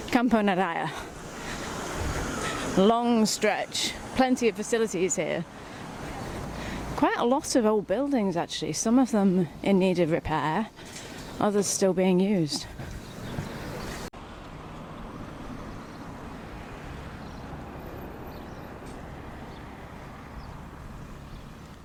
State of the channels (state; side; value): identical; both; correlation 1.00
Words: Camponaraya. Long stretch, plenty of facilities here. Quite a lot of old buildings actually, some of them in need of repair, others still being used.